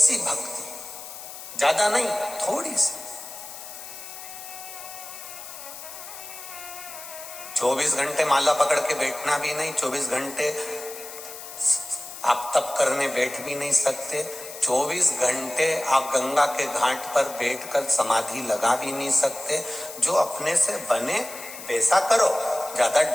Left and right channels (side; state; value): left; noise; hiss, 12 dB below the sound